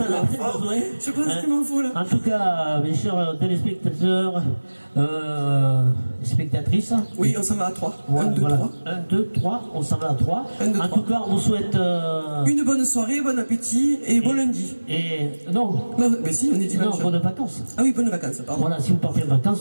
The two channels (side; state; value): both; inverted; correlation -1.00